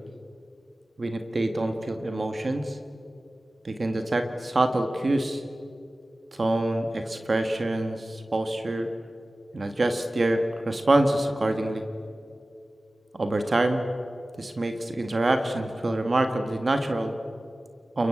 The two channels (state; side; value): normal; both; correlation 0.97